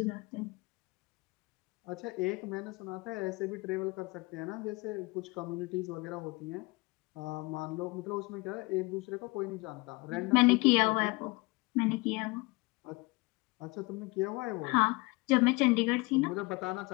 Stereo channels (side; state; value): right; quieter; 25.4 dB